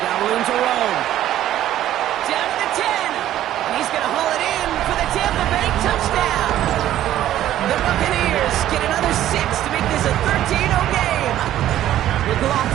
got room to roll. Down to the 10. And he's going to haul it in for the Tampa Bay touchdown. The Buccaneers get another 6 to make this a 13-0 game.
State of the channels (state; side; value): quieter; left; 12.7 dB